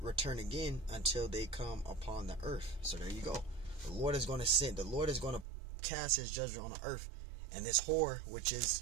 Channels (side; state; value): left; drops out; at 5.5 s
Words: return again until they come upon the earth. So there you go. The Lord is going to send. The Lord is going to cast his judgment on the earth. And this whore, which is